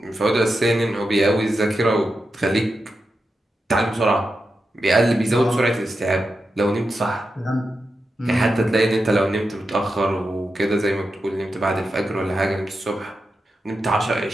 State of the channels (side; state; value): both; normal; correlation 0.89